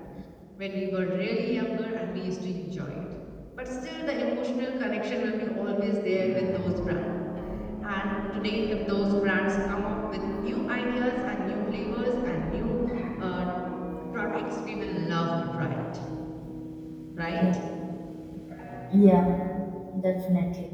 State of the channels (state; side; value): identical; both; correlation 1.00